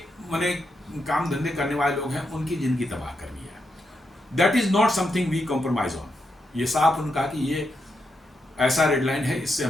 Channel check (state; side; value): normal; both; correlation 0.83